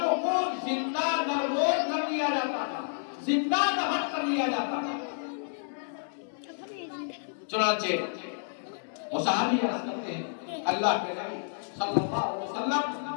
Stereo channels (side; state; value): right; silent; 58 dB below the other